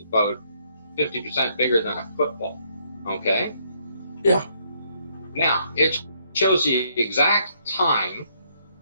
about 50% bigger than a football, okay? Yeah. Now, it shows the exact time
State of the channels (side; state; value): both; inverted; correlation -0.70